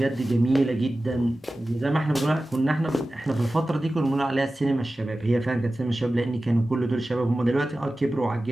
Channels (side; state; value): both; normal; correlation 0.95